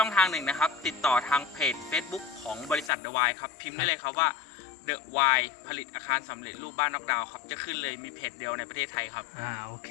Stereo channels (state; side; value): drops out; right; at 2.9 s